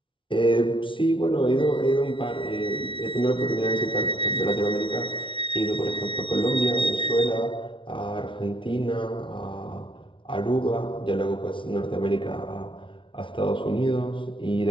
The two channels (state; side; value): late; right; 0.25 ms